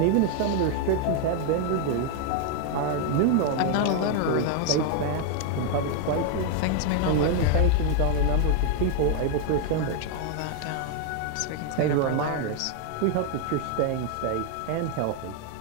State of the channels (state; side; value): different; both; correlation 0.00